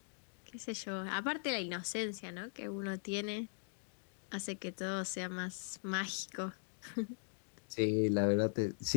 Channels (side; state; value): right; silent; digital silence